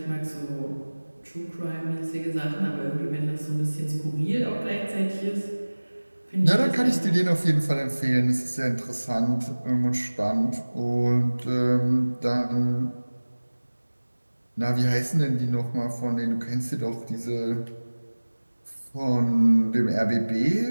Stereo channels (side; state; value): both; inverted; correlation -1.00